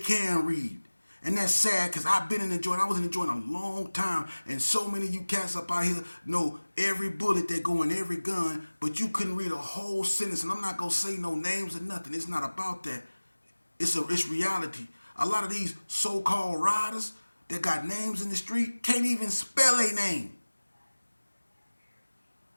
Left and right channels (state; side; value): inverted; both; correlation -1.00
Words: read. And that's sad because I've been in the joint. I was in the joint a long time. And so many of you cats up out here know every bullet that go in every gun, but you couldn't read a whole sentence. And I'm not going to say no names or nothing. It's not about that. It's reality. A lot of these so-called riders that got names in the street can't even spell a name.